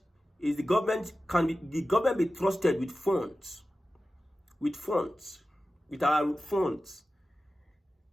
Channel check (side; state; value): both; normal; correlation 0.94